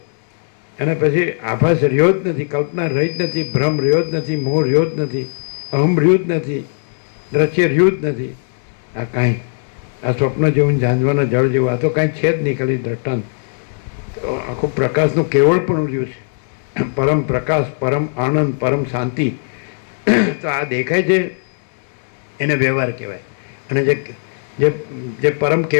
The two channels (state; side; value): silent; right; digital silence